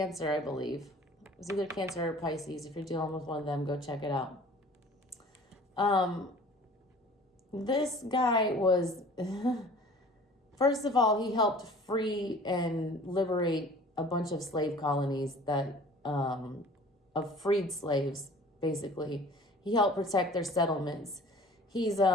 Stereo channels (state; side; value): normal; both; correlation 0.47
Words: I believe. It was either Cancer or Pisces. If you're dealing with one of them, go check it out. This guy was, first of all, he helped free and liberate a bunch of slave colonies that, of freed slaves, basically. He helped protect their settlements. He's